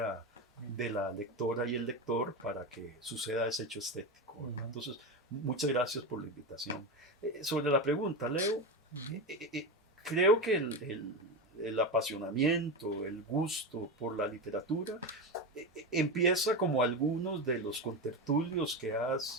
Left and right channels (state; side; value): normal; both; correlation 0.19